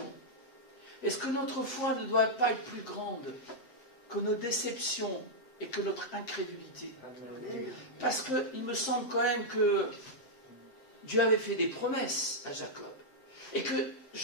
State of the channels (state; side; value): late; right; 7.6 ms